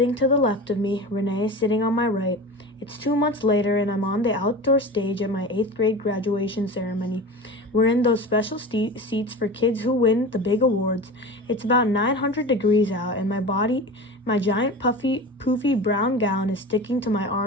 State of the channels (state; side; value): normal; both; correlation 0.32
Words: to the left of me, Renee is sitting on my right. It's 2 months later and I'm on the outdoor stage at my 8th grade graduation ceremony. We're in those special seats for kids who win the big awards. It's about 900 degrees out and my giant poofy brown gown is sticking to my